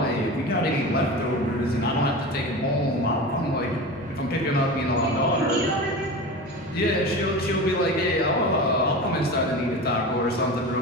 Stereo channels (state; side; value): noise; left; hum, 28 dB below the sound